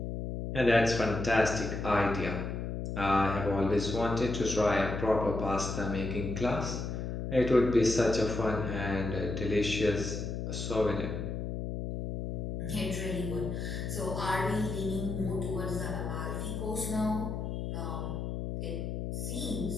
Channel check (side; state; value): left; noise; hum, 4 dB below the sound